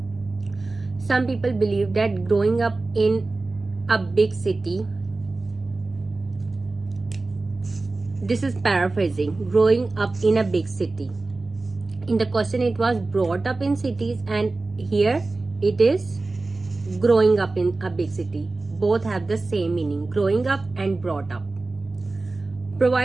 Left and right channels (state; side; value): quieter; left; 3.4 dB